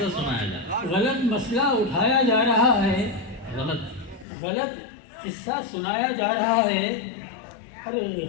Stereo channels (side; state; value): right; drops out; at 4.2 s